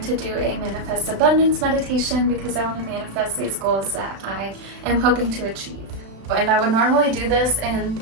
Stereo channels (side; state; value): left; late; 36 ms